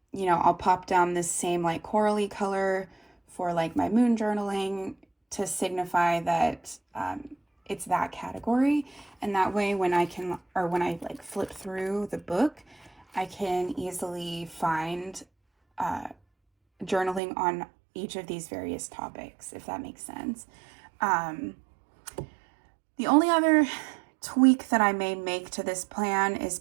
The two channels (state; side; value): drops out; left; at 17.2 s